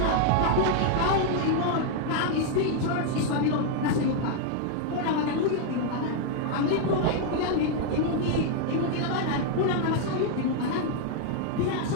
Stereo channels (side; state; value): both; different; correlation 0.00